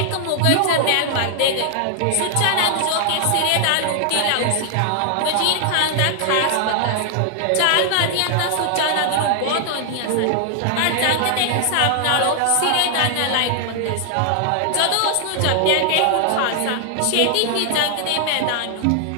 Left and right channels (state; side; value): different; both; correlation 0.00